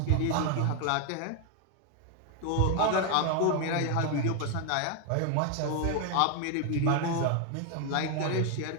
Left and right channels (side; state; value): both; different; correlation 0.01